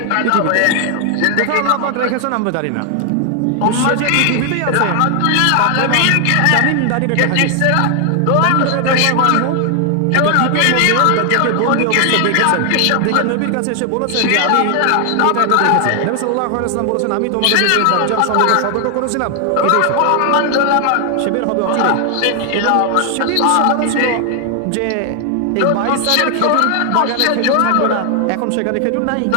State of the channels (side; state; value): both; different; correlation 0.00